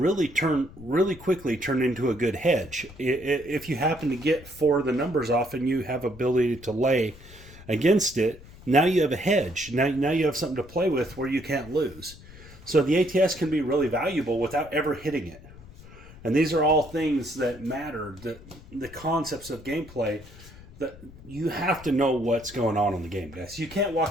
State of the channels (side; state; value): left; noise; rumble, 19 dB below the sound